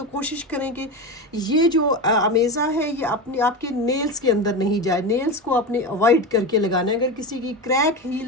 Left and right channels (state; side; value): normal; both; correlation 0.21